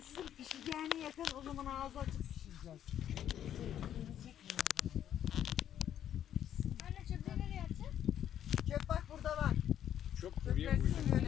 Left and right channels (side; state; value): right; quieter; 10.4 dB